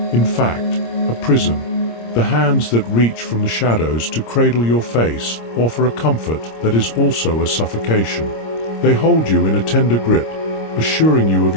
in fact, a prison. The hands that reach from the shadows to cradle your face offer a comfort that is also a suffocation. They hold you in a tender grip, assuring you of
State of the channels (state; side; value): late; right; 26 ms